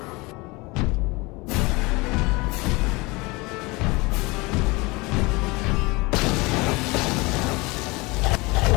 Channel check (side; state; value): right; quieter; 24.6 dB